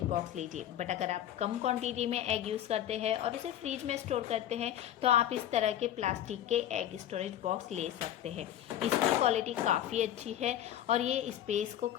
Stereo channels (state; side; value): quieter; right; 11.5 dB